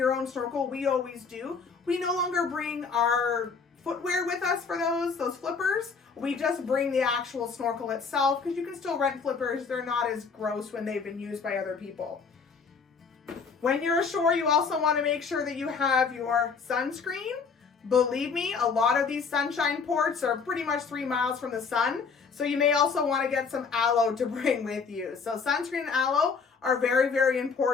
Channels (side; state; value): right; quieter; 5.3 dB